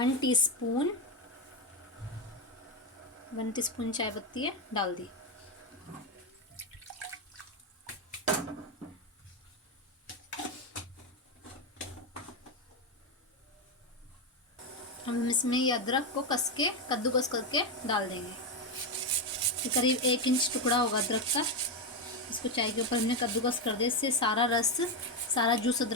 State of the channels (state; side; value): normal; both; correlation 0.08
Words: टीस्पून चाय पत्ती है डाल दी। हम इसमें ये अदरक को कद्दूकस करके डाल देंगे। ये करीब 1 इंच टुकड़ा होगा अदरक का। इसको चाय के ऊपर हमने कद्दूकस कर दिया, इससे सारा रस, सारा जूस